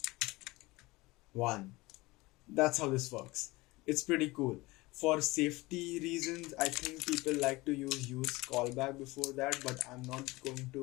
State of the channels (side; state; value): right; quieter; 21.5 dB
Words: That's how this works. It's pretty cool. For safety reasons, I think people like to use callback before that, but I'm not going